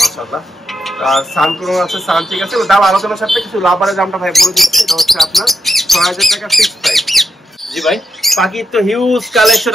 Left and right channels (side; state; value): both; normal; correlation 0.85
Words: মাশাআল্লাহ। আর সানকুনো আছে, সানচিক আছে। ওর দাম আলোচনার সাথে কিছু লাভারের দামটা ভাই বলে দিচ্ছি। এটা হচ্ছে আপনার 6,000 টাকা ফিক্স প্রাইস। জি ভাই, পাখির তো হিউজ কালেকশন